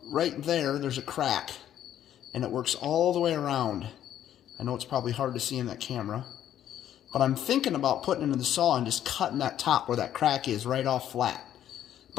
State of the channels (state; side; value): quieter; right; 11.0 dB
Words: right there, there's a crack, and it works all the way around. I know it's probably hard to see in that camera, but I'm thinking about putting it into the saw and just cutting that top where that crack is right off flat.